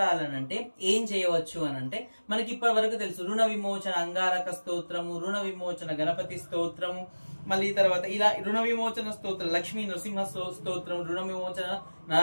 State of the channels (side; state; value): both; inverted; correlation -1.00